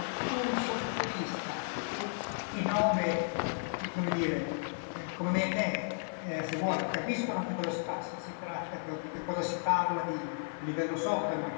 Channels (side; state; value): right; silent; 55 dB below the other